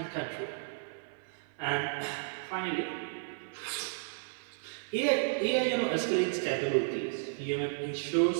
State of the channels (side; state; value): left; silent; 56 dB below the other